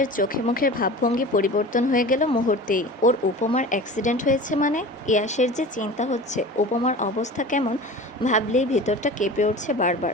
চোখে মুখের ভাবভঙ্গি পরিবর্তন হয়ে গেল মুহূর্তেই। ওর উপমার অ্যাক্সিডেন্ট হয়েছে মানে? ইয়াসের যে চিন্তা হচ্ছে উপমার অবস্থা কেমন ভাবলেই ভেতরটা কেঁপে উঠছে বারবার।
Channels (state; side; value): normal; both; correlation 0.37